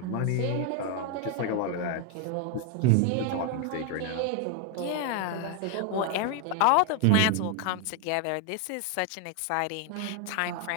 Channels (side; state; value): both; different; correlation 0.01